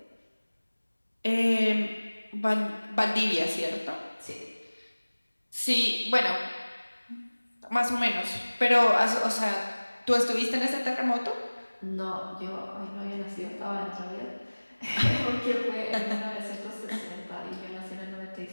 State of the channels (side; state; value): both; inverted; correlation -1.00